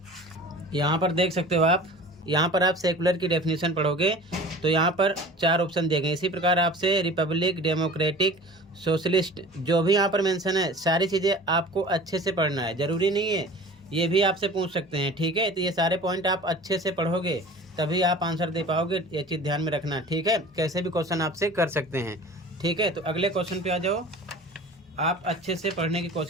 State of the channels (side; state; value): both; normal; correlation 0.41